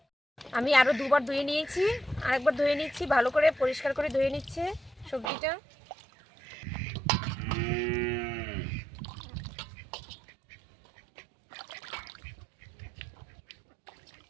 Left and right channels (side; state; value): left; drops out; at 5.3 s